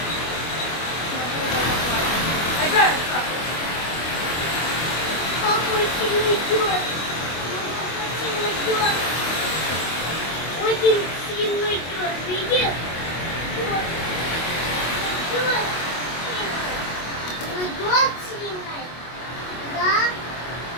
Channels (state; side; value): late; right; 25 ms